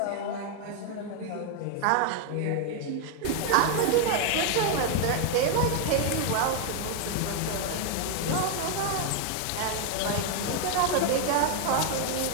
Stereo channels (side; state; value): both; different; correlation 0.01